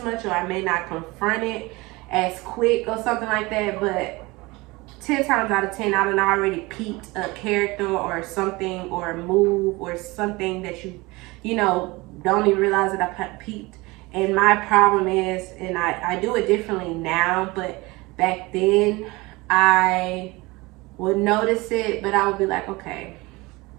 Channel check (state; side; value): quieter; left; 22.9 dB